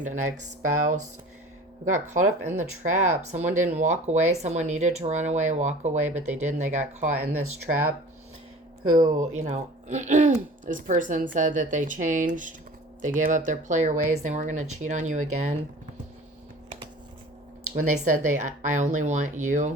An ex-spouse who got caught up in the trap. Someone didn't walk away. Someone needed to run away, walk away, but they didn't. They got caught in this trap. Who, you know, this person said that they changed. They gave up their player ways. They weren't going to cheat on you again. When they said I only want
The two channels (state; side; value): normal; both; correlation 0.43